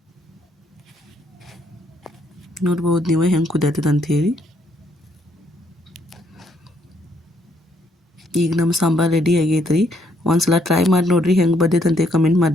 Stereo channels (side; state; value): both; normal; correlation 0.70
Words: ನೋಡ್ಬೋದು ನೀವು ಹೆಂಗೆ ಕುದಿಯತ್ತದ ಅಂಥೇಳಿ. ಈಗ ನಮ್ಮ ಸಾಂಬಾರು ರೆಡಿ ಆಗೈತೆ ರೀ. ಒಂದ್ಸಲ ಟ್ರೈ ಮಾಡಿ ನೋಡಿರಿ ಹೆಂಗೆ ಬಂದೈತೆ ಅಂತ ಕಮೆಂಟ್